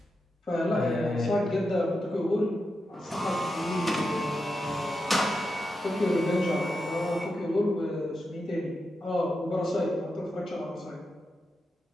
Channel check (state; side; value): normal; both; correlation 0.88